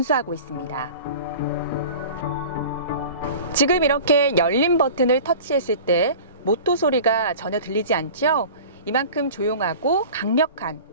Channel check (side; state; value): both; inverted; correlation -0.39